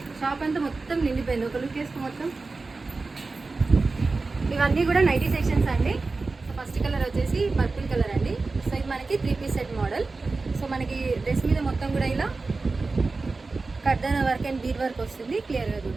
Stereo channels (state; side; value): quieter; left; 3.8 dB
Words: షాప్ అంతా మొత్తం నిండిపోయింది. ఒక లుక్ వేసుకు మొత్తం ఇవన్నీ కూడా నైటీ సెక్షన్స్ అండి. సో ఫస్ట్ కలర్ వచ్చేసి పర్పుల్ కలర్ అండి. సో ఇది మనకి 3 పీస్ సెట్ మోడల్. సో మనకి డ్రెస్ మీద మొత్తం కూడా ఇలా కర్దన వర్క్ అండ్ బీడ్ వర్క్ వస్తుంది క్లియర్గా